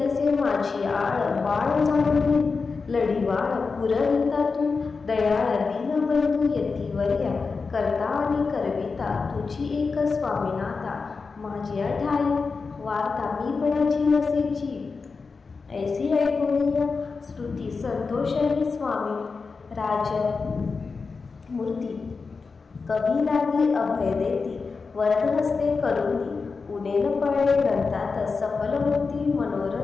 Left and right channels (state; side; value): quieter; right; 4.6 dB